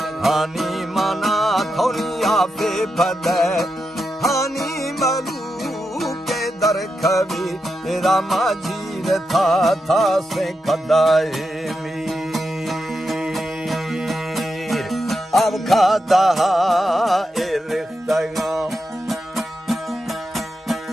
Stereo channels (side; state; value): both; normal; correlation 0.87